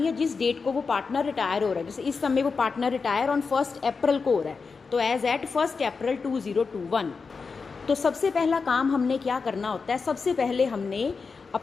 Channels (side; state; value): right; quieter; 4.9 dB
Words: है जिस डेट को वो पार्टनर रिटायर हो रहा है। जैसे इस समय वो पार्टनर रिटायर ऑन 1 अप्रैल को हो रहा है, तो एज एट 1 अप्रैल 2021। तो सबसे पहला काम हमने क्या करना होता है, सबसे पहले हमने